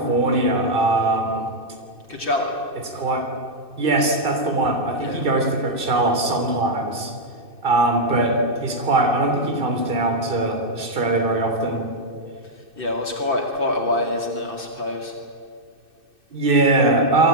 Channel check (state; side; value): late; left; 2.6 ms